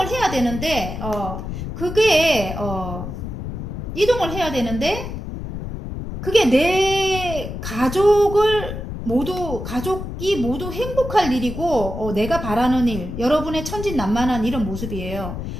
해야 되는데 그게 이동을 해야 되는데 그게 내 가족이 모두 행복할 일이고, 내가 바라는 일, 여러분의 천진난만한 이런 모습이에요.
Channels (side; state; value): left; noise; rumble, 7 dB below the sound